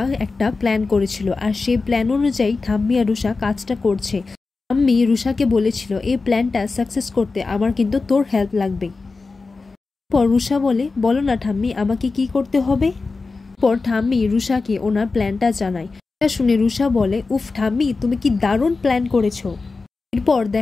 একটা প্ল্যান করেছিল, আর সেই প্ল্যান অনুযায়ী ঠাম্মি আর রুষা কাজটা করছে। ঠাম্মি রুষাকে বলেছিল, এই প্ল্যানটা সাকসেস করতে আমার কিন্তু তোর হেল্প লাগবে। পর রুষা বলে, বলো না ঠাম্মি, আমাকে কি করতে হবে? পর ঠাম্মি রুষাকে ওনার প্ল্যানটা জানায়। এটা শুনে রুষা বলে, উফ ঠাম্মি, তুমি কি দারুণ প্ল্যান করেছো। এরপর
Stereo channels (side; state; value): right; quieter; 4.0 dB